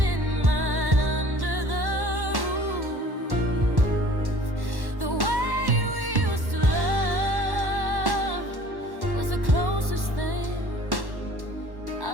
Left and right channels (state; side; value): late; left; 1.1 ms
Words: mine under the roof. The way we used to love was the closest thing